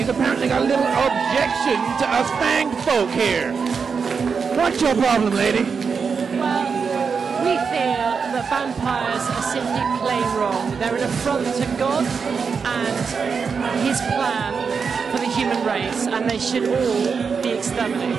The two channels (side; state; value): left; quieter; 5.7 dB